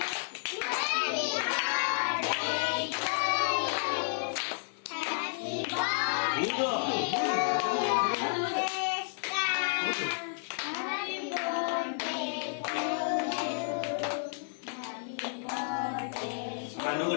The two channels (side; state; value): right; silent; digital silence